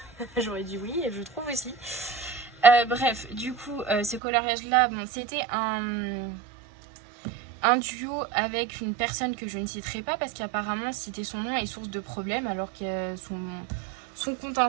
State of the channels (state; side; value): drops out; left; at 4.2 s